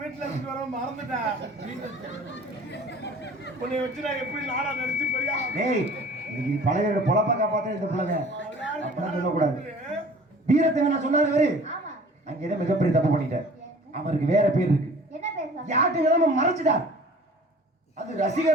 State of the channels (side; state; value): both; normal; correlation 0.47